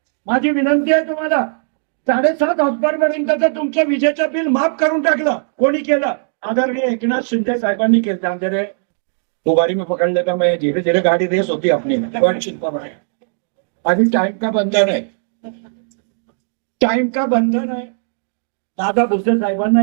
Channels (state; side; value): silent; left; digital silence